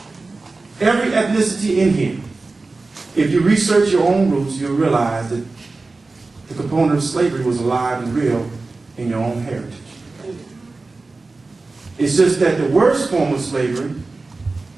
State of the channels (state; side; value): quieter; left; 3.6 dB